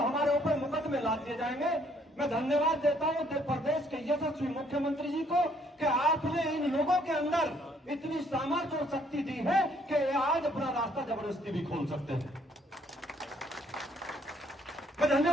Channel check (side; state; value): both; normal; correlation 0.66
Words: हमारे ऊपर मुकदमे लाद दिए जाएंगे। मैं धन्यवाद देता हूं उत्तर प्रदेश के यशस्वी मुख्यमंत्री जी को कि आपने इन लोगों के अंदर इतनी सामर्थ्य और शक्ति दी है कि आज अपना रास्ता जबरदस्ती भी खोल सकते हैं। मैं